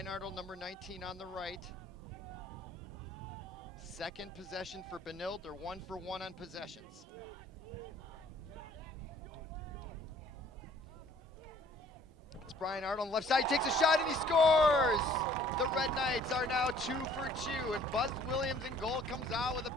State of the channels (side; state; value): both; normal; correlation 0.56